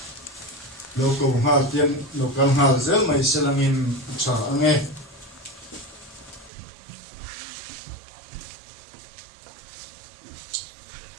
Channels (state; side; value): drops out; left; at 6.5 s